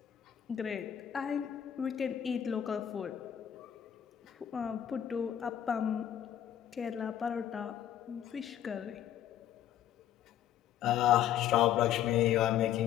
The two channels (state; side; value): quieter; right; 10.5 dB